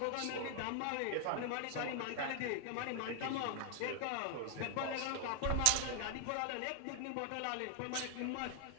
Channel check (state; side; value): different; both; correlation 0.00